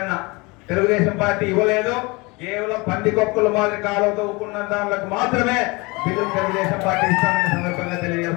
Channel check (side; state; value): right; quieter; 25.7 dB